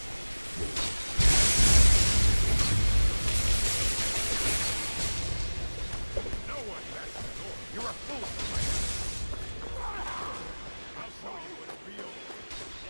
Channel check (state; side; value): inverted; both; correlation -1.00